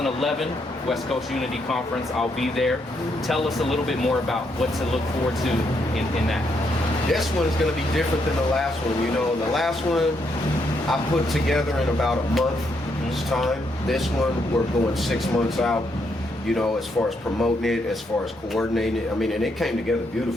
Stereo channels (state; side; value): normal; both; correlation 0.77